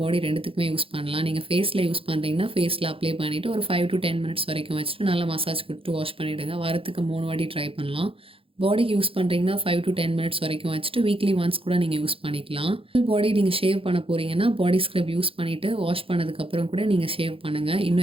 பாடி ரெண்டுத்துக்குமே யூஸ் பண்ணலாம். நீங்கள் ஃபேஸில் யூஸ் பண்ணுறீங்கன்னா ஃபேஸில் அப்ளை பண்ணிவிட்டு ஒரு 5 to 10 minutes வரைக்கும் வச்சுட்டு நல்லா மசாஜ் கொடுத்து வாஷ் பண்ணிவிடுங்க. வாரத்துக்கு 3 வாட்டி ட்ரை பண்ணலாம். பாடிக்கு யூஸ் பண்ணுறீங்கன்னா 5 to 10 minutes வரைக்கும் வச்சுட்டு வீக்லி ஒன்ஸ் கூட நீங்கள் யூஸ் பண்ணிக்கலாம். ஃபுல் பாடி நீங்கள் ஷேவ் பண்ண போகிறீங்கன்னா பாடி ஸ்க்ரப் யூஸ் பண்ணிவிட்டு வாஷ் பண்ணதுக்கப்புறம் கூட நீங்கள் ஷேவ் பண்ணுங்கள்.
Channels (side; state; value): left; late; 0.27 ms